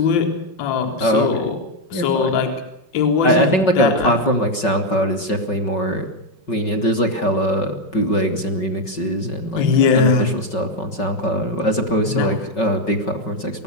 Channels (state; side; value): late; right; 5.3 ms